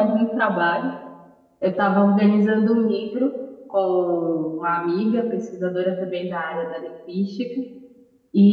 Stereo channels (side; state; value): both; identical; correlation 1.00